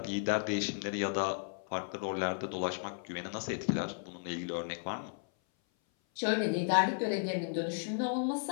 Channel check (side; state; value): right; silent; 55 dB below the other